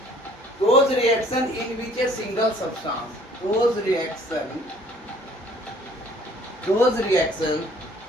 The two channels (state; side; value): normal; both; correlation 0.56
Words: Those reaction in which a single substance, those reaction